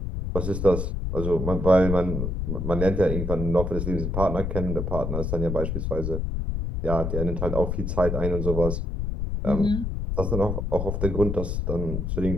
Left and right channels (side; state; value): left; noise; rumble, 2 dB below the sound